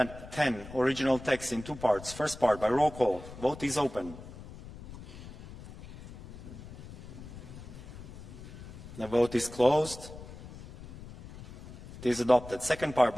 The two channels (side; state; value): left; noise; rumble, 15 dB below the sound